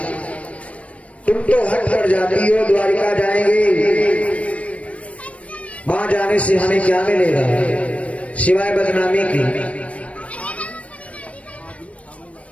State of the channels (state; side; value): late; right; 0.064 ms